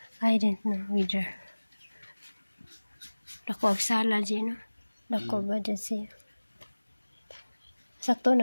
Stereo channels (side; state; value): both; inverted; correlation -1.00